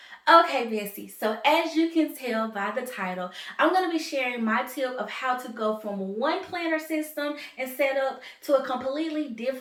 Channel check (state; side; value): identical; both; correlation 1.00